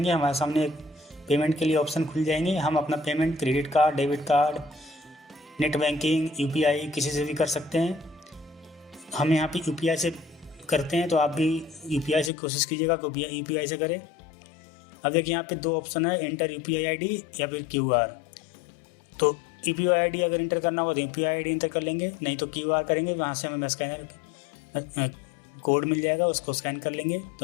हमारे सामने एक पेमेंट के लिए ऑप्शन खुल जाएंगे। हम अपना payment credit card, debit card, net banking, UPI किसी से भी कर सकते हैं। हम यहाँ पे यूपीआई से करते हैं, तो आप भी यूपीआई से कोशिश कीजिएगा कि यूपीआई से करें। अब देखिए यहाँ पे दो ऑप्शन है, एंटर यूपीआई आईडी या फिर क्यूआर। तो यूपीआई आईडी अगर इंटर करना हो तो यूपीआई आईडी इंटर कर लेंगे, नहीं तो क्यूआर करेंगे। वहाँ से हमें स्कैनर कोड मिल जाएगा, उसको स्कैन कर लेंगे।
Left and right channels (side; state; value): right; drops out; at 12.3 s